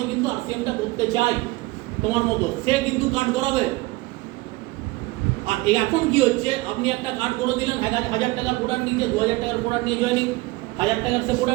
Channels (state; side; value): quieter; left; 21.4 dB